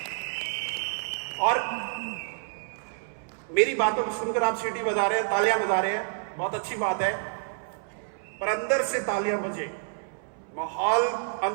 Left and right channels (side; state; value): left; silent; 59 dB below the other